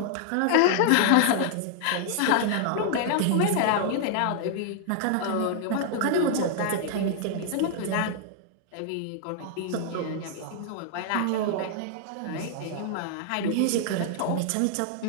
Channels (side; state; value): both; different; correlation 0.00